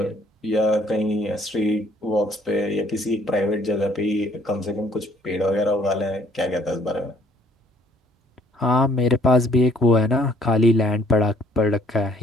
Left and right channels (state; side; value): normal; both; correlation 0.61